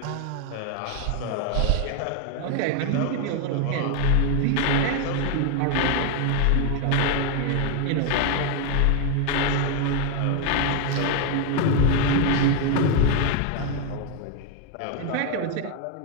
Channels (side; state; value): both; different; correlation 0.01